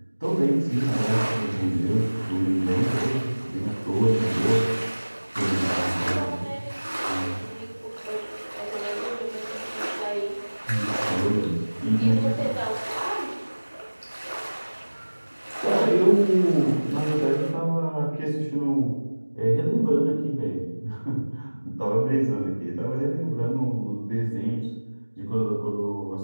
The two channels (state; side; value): inverted; both; correlation -1.00